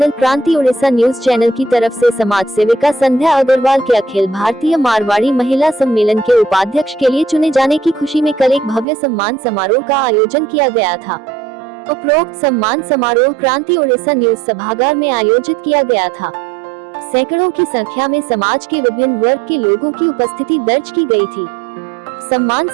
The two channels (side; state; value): left; drops out; at 8.8 s